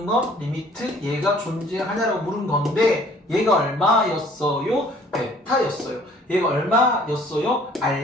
건 리미트 얘가 존재하냐라고 물은 건데 얘가 얼마였어요? 베타였어요. 얘가 얼마였어요?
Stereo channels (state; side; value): normal; both; correlation 0.55